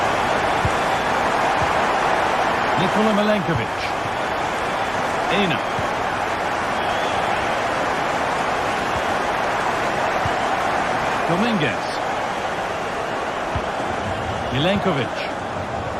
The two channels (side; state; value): both; identical; correlation 1.00